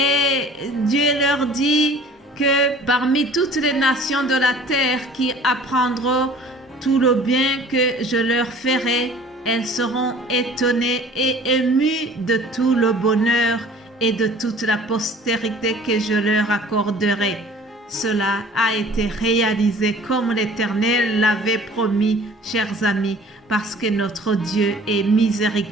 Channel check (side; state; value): both; normal; correlation 0.49